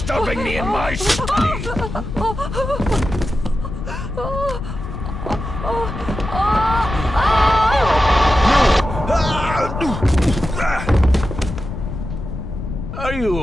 me in my study? Are you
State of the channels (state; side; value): noise; left; rumble, 7 dB below the sound